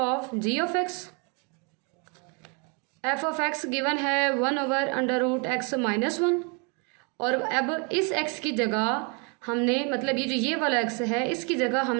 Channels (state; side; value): quieter; left; 34.6 dB